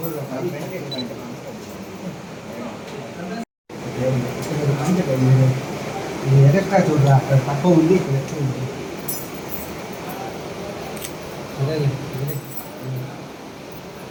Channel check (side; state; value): both; identical; correlation 1.00